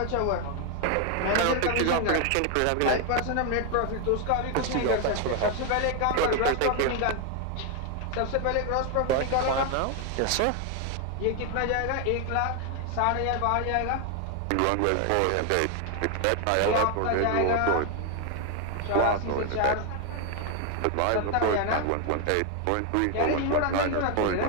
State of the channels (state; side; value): different; both; correlation 0.01